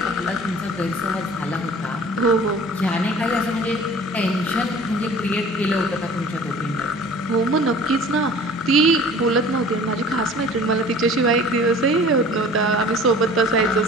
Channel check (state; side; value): normal; both; correlation 0.46